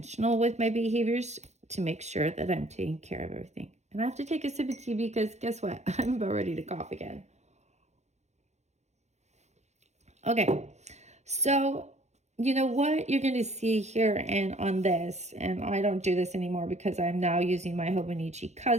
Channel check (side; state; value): left; late; 0.33 ms